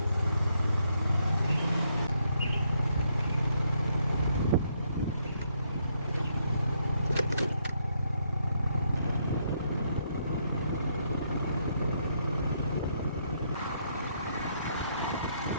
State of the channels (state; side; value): inverted; both; correlation -0.75